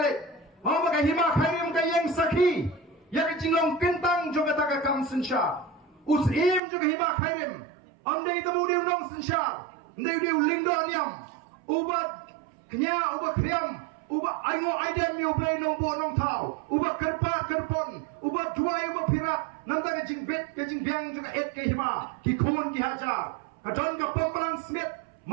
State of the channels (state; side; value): drops out; left; at 6.6 s